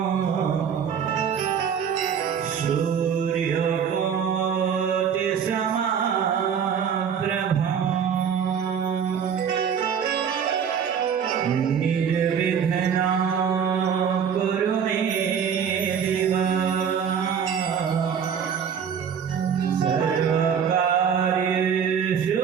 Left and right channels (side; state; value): left; quieter; 7.5 dB